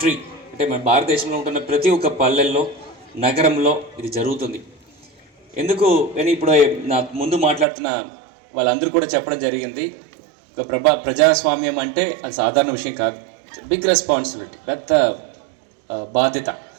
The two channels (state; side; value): drops out; left; at 7.7 s